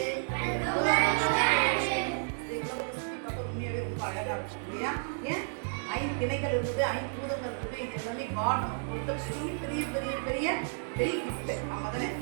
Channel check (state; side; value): silent; left; digital silence